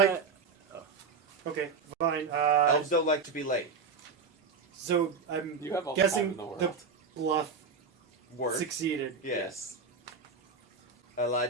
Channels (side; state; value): left; quieter; 4.9 dB